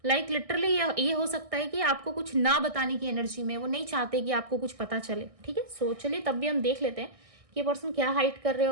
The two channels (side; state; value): left; late; 1.6 ms